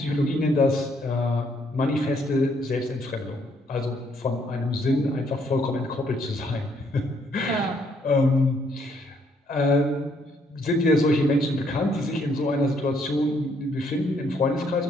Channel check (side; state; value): both; normal; correlation 0.69